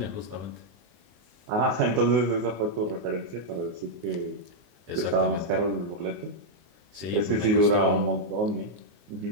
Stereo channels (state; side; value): late; left; 24 ms